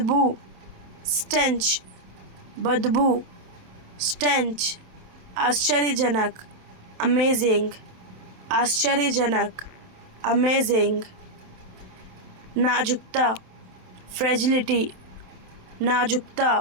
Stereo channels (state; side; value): late; left; 27 ms